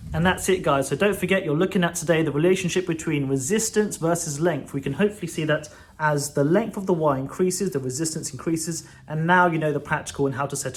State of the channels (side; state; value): both; identical; correlation 1.00